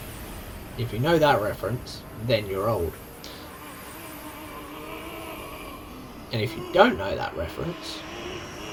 If you know that reference, then you're old. And if you don't know that reference,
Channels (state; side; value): identical; both; correlation 1.00